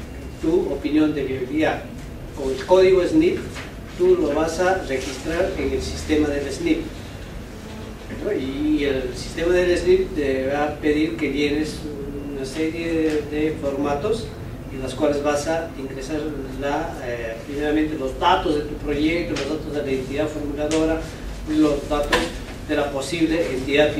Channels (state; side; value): identical; both; correlation 1.00